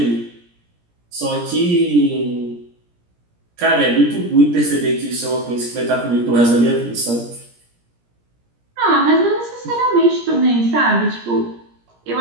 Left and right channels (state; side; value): late; left; 17 ms